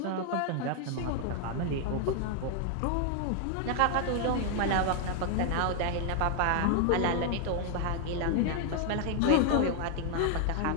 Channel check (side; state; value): both; different; correlation 0.00